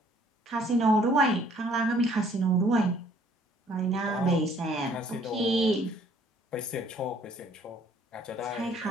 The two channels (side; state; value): both; normal; correlation 0.60